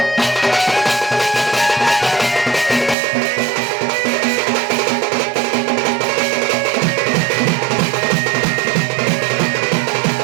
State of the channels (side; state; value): left; drops out; at 3.0 s